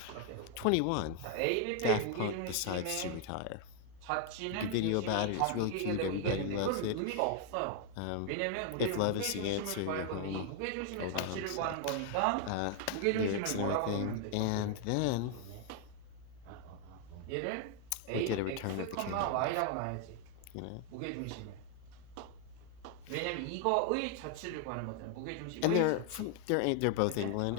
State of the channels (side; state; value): both; different; correlation 0.00